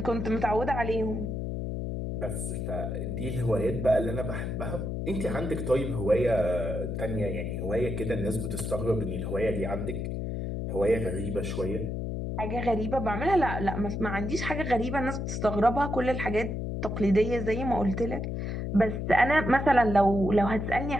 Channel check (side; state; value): left; noise; hum, 3 dB below the sound